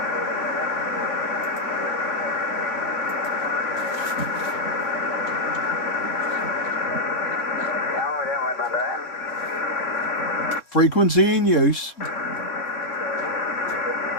Frequency in use.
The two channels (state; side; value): late; right; 3.7 ms